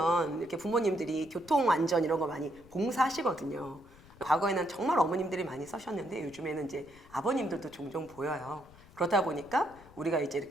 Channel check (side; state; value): left; noise; rumble, 23 dB below the sound